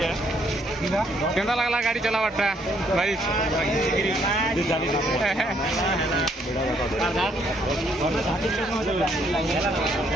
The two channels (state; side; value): normal; both; correlation 0.69